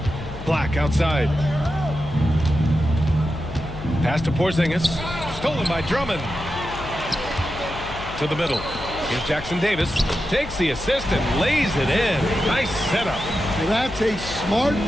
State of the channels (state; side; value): noise; left; hum, 13 dB below the sound